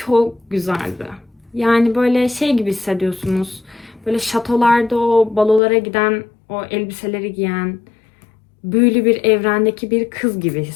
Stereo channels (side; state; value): right; drops out; at 5.6 s